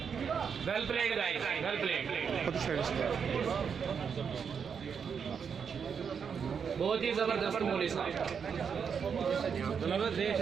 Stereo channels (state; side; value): quieter; left; 6.7 dB